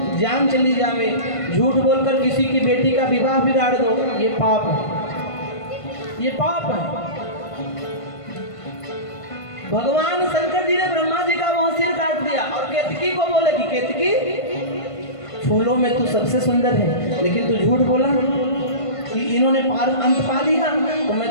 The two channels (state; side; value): late; right; 1.5 ms